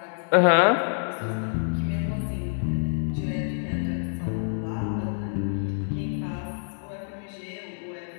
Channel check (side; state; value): right; silent; 60 dB below the other